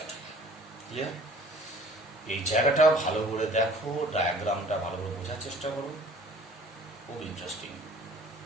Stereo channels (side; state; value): both; normal; correlation 0.50